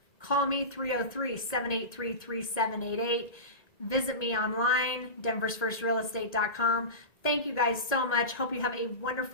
Call me 303-783-3788. Visit me online, denversfirstrealestate.com. Thank you guys so much. Hope you have a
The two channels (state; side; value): late; right; 1.9 ms